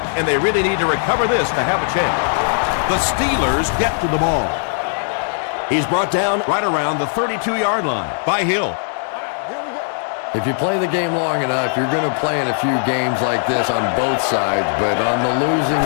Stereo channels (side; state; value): right; silent; digital silence